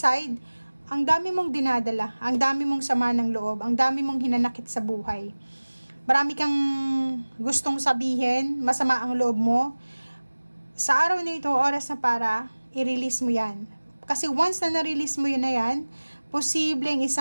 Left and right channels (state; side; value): inverted; both; correlation -1.00